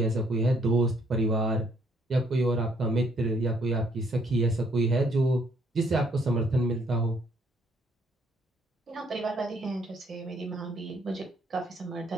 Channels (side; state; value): both; normal; correlation 0.67